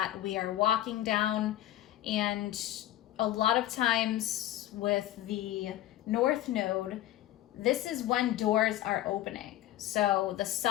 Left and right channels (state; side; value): quieter; right; 13.9 dB